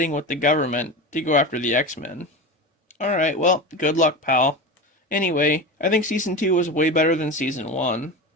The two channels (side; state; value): both; normal; correlation 0.25